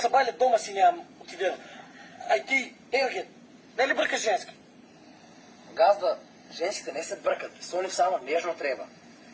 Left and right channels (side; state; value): both; identical; correlation 1.00